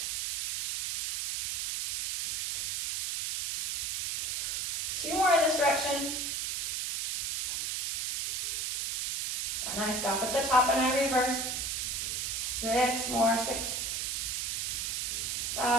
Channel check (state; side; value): noise; right; hiss, 1 dB below the sound